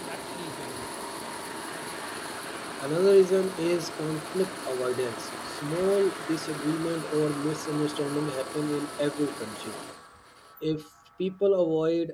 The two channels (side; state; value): both; identical; correlation 1.00